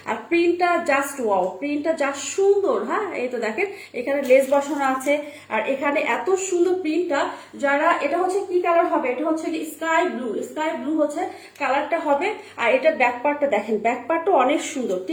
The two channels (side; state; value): both; identical; correlation 1.00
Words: আর প্রিন্টটা জাস্ট ওয়াও, প্রিন্টটা জাস্ট সুন্দর। হ্যাঁ এই তো দেখেন এখানে লেস বসানো আছে, আর এখানে এত সুন্দর প্রিন্টটা। যারা এটা হচ্ছে কি কালার হবে, এটা হচ্ছে স্কাই ব্লু হচ্ছে কালারটা হবে। আর এটা ব্যাক পার্টটা দেখেন, ব্যাক পার্টটা অনেক সুন্দর,